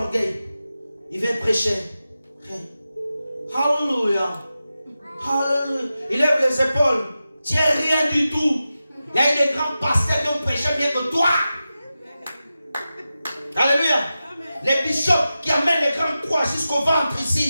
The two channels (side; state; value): both; inverted; correlation -0.93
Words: orgueil. Ils viennent prêcher. Alléluia. Il lève les épaules. Tu n'es rien du tout. Il y a eu des grands pasteurs qui ont prêché mieux que toi. Alléluia. Les bishops qui amènent les grandes croix jusqu'au ventre